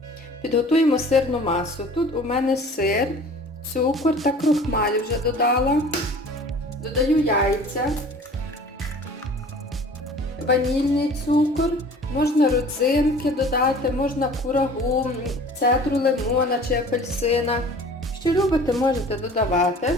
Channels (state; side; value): normal; both; correlation 0.46